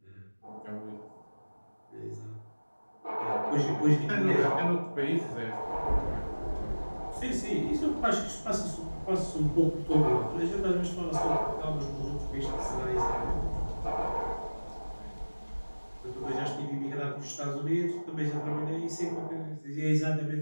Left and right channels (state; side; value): inverted; both; correlation -1.00